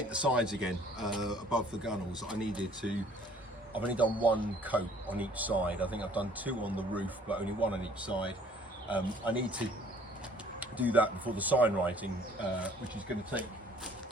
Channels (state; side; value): normal; both; correlation 0.57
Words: sides again above the gunnels. I've only done one coat on each side. I think I've done two on the roof, but only one on each side. I need to do that before the sign writing, which is going to take